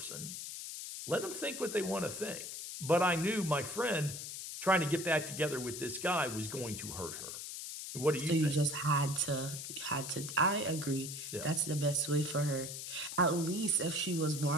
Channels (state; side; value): noise; left; hiss, 7 dB below the sound